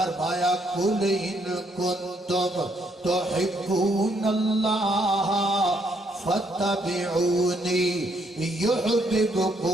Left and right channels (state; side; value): normal; both; correlation 0.71